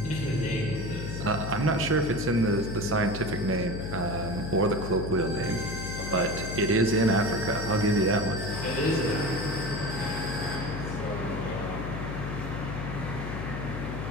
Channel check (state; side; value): noise; left; hum, 5 dB below the sound